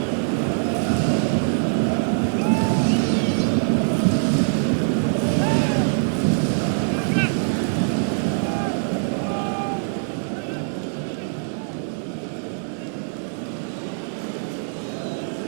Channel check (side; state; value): left; silent; digital silence